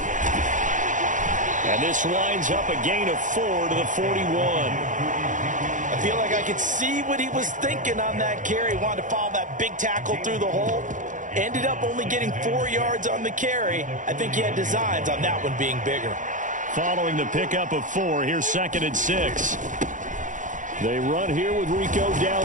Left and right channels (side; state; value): left; late; 0.37 ms